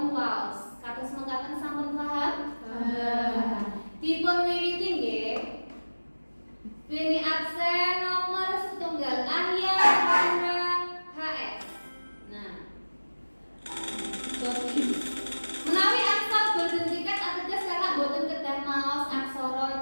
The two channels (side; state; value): both; inverted; correlation -1.00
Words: waos. Kados mekaten sampun paham? Dipun wiwiti nggih. Beni aksen nomor setunggal ahya haura HS. Nah. Jadi menawi angsal boten tiket ateges kakak boten kedah maos aksara